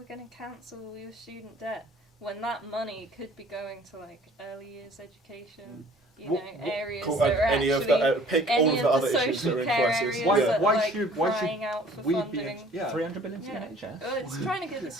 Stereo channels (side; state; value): both; normal; correlation 0.53